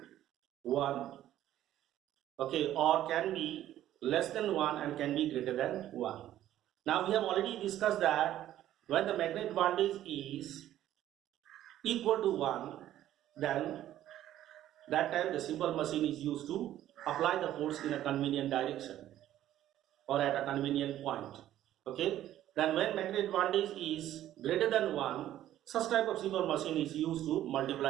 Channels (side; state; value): left; quieter; 12.7 dB